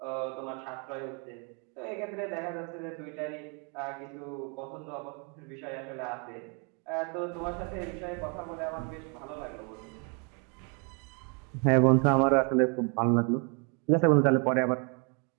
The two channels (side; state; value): left; quieter; 36.0 dB